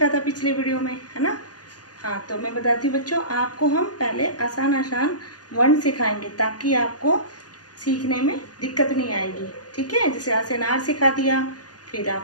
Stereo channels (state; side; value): late; right; 0.69 ms